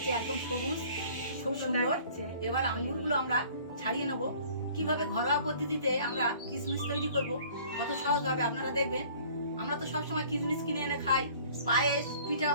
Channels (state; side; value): inverted; both; correlation -0.51